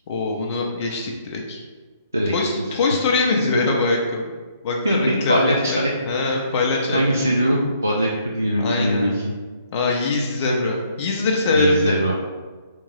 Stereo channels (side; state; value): both; inverted; correlation -0.67